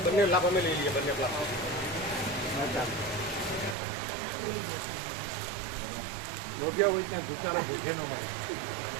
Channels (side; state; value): left; drops out; at 3.8 s